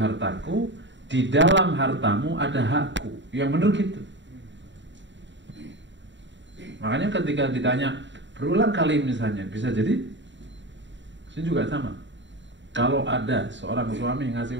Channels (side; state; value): left; late; 0.53 ms